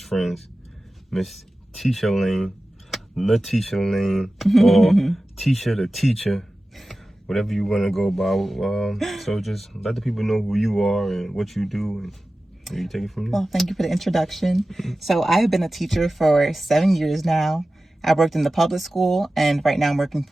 friends, Miss Tisha Lane, Tisha Lane, or Tisha the Teacher, whatever you want to go by. So just let the people know who you are and what you do, and you take it from there. Well, thank you for the introduction. So I have been a teacher for 7 years now. I worked in the public school, and right now I'm working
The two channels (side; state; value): both; normal; correlation 0.95